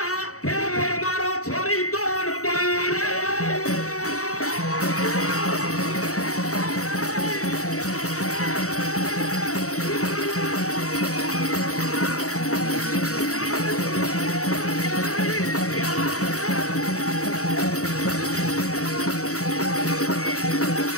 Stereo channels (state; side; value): late; right; 0.65 ms